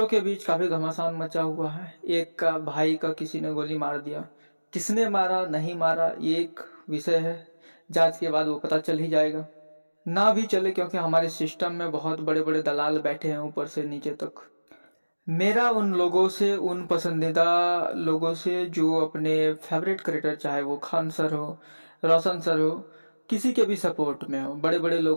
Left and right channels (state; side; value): inverted; both; correlation -1.00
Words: के बीच काफी घमासान मचा हुआ है। एक का भाई का किसी ने गोली मार दिया, किसने मारा नहीं मारा ये एक विषय है, जांच के बाद वो पता चल ही जाएगा। ना भी चले, क्योंकि हमारे सिस्टम में बहुत बड़े बड़े दलाल बैठे हैं ऊपर से नीचे तक। मेरा उन लोगों से, उन पसंदीदा लोगों से जो अपने फेवरेट क्रिएटर, चाहे वो खान सर हो, रोशन सर हो, किसी के भी सपोर्ट में हो, बड़े बड़े